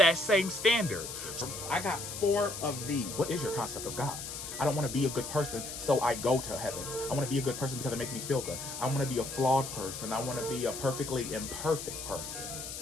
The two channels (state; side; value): noise; left; hiss, 8 dB below the sound